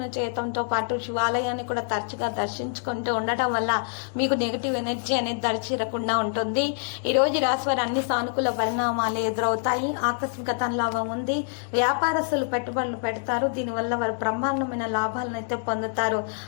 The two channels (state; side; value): silent; right; digital silence